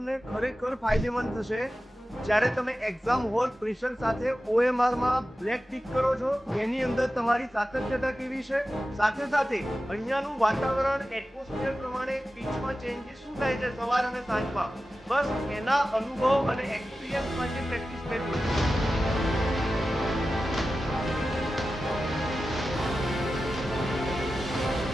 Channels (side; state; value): both; normal; correlation 0.94